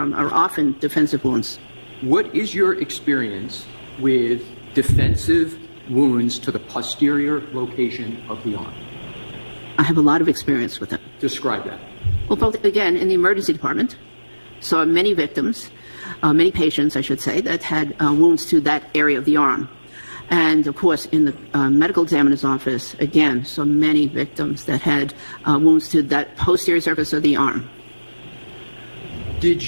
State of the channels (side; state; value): both; inverted; correlation -1.00